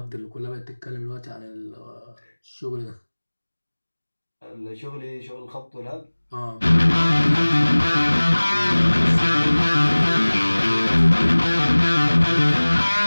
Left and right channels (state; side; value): inverted; both; correlation -1.00